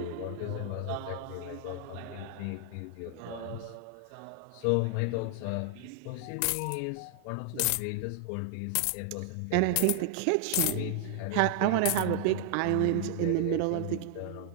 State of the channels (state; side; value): different; both; correlation 0.00